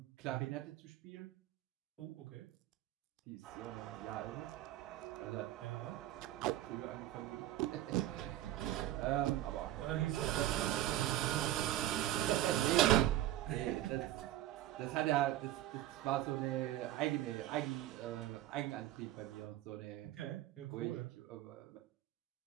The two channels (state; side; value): quieter; left; 13.9 dB